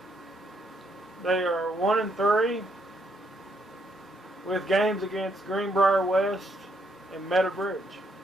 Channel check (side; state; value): both; normal; correlation 0.74